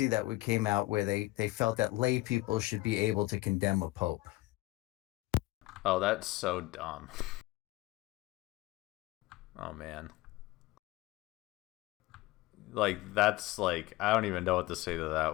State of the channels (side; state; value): right; quieter; 19.3 dB